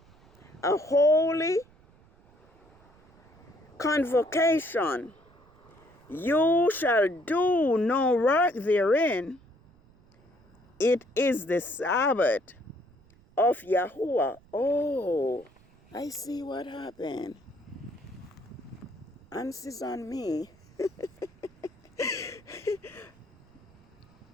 a holy convocation. You shall do no work therein. It is the Sabbath of Yahuwah. Oh, I see what happened. Answers on me.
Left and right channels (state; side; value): noise; right; rumble, 28 dB below the sound